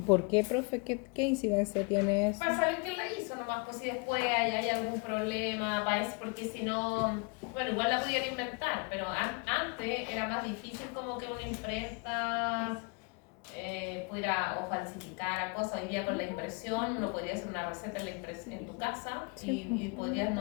qué, profe? ¿Qué incidencia tiene eso? Para saber quién la hizo, ¿no nomás, pues si después hay algún problema, porque si no, bueno, igual la pudieran inventar, pero antes era más difícil como que una imprenta pudiera o falsificar cosas. Hoy día con la impresión uno podría hacer una receta en tu casa y podrías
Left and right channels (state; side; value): quieter; right; 33.4 dB